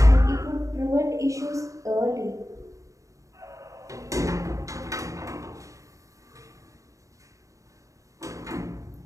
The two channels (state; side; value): late; left; 0.16 ms